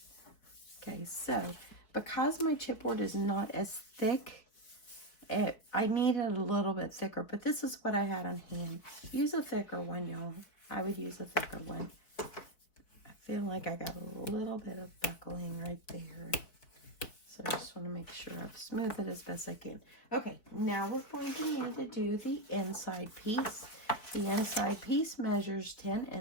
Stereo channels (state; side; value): late; right; 4.6 ms